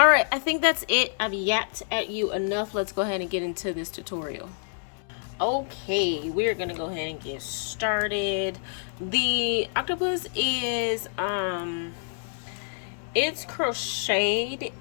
right, I think that's it. I've yapped at you enough. Let's go ahead and get into this tutorial. Okay, we're gonna go ahead and get started. The octopus is it's crocheted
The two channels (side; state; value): right; silent; 60 dB below the other